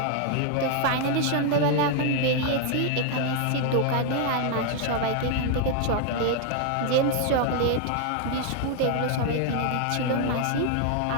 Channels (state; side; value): different; both; correlation 0.00